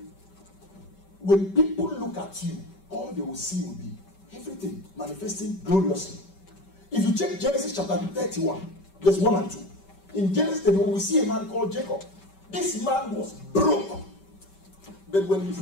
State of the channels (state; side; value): late; right; 5.2 ms